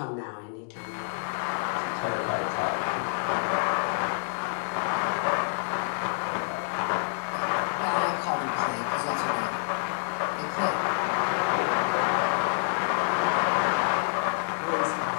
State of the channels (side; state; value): right; silent; 60 dB below the other